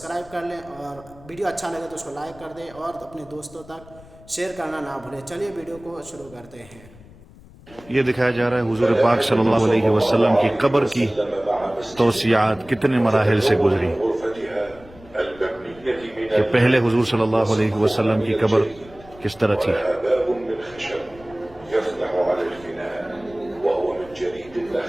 کر لیں، اور ویڈیو اچھا لگے تو اس کو لائک کر دیں، اور اپنے دوستوں تک شیئر کرنا نہ بھولیں۔ چلیے ویڈیو کو شروع کرتے ہیں۔ یہ دکھایا جا رہا ہے حضور پاک صلی اللہ علیہ وسلم کی قبر کی توسیعات کتنے مراحل سے گزری، کہ پہلے حضور صلی اللہ علیہ وسلم کی قبر کس طرح تھی۔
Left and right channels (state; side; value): noise; left; rumble, 22 dB below the sound